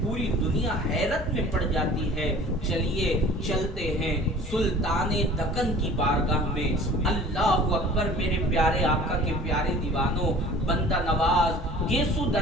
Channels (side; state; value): both; normal; correlation 0.45